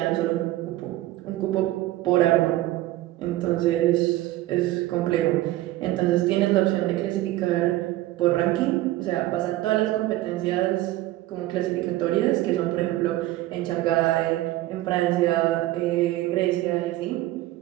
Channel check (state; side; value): quieter; left; 16.2 dB